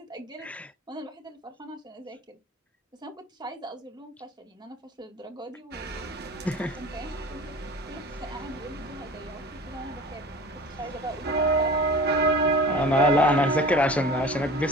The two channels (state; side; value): normal; both; correlation 0.40